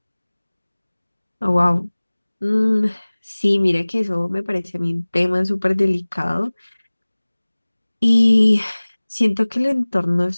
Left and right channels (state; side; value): inverted; both; correlation -1.00